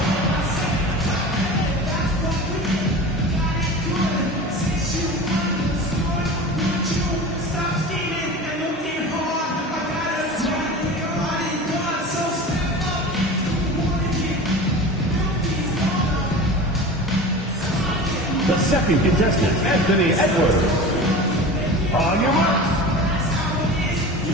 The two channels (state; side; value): normal; both; correlation 0.34